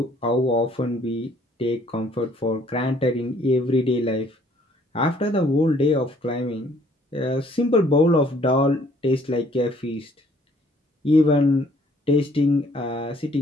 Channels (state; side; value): normal; both; correlation 0.61